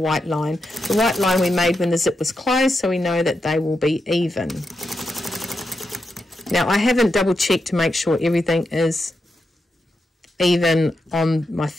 white line. The white line we made when the zip was closed, so we know that they will be even. Now, I haven't double checked to make sure everything is even on my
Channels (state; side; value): normal; both; correlation 0.86